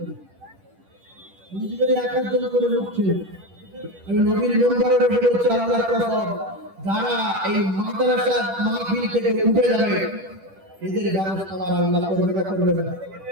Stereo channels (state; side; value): late; left; 10 ms